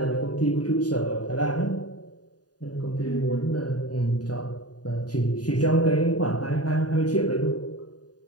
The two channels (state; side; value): late; right; 0.68 ms